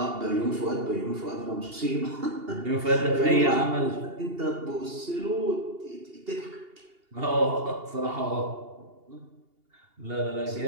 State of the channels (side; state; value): left; late; 2.8 ms